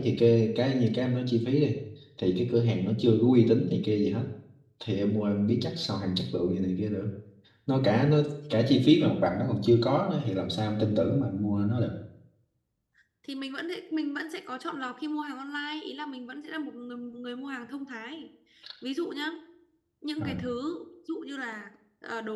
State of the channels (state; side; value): identical; both; correlation 1.00